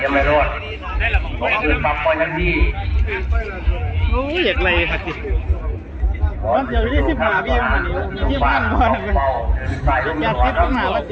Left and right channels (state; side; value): identical; both; correlation 1.00